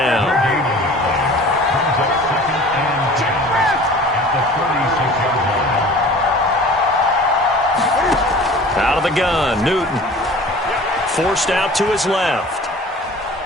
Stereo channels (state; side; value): normal; both; correlation 0.44